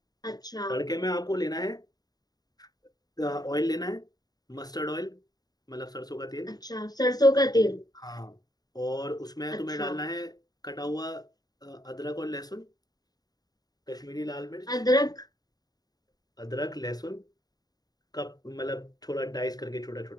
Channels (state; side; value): late; right; 0.19 ms